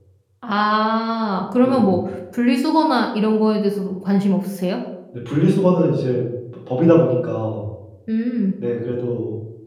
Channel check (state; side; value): identical; both; correlation 1.00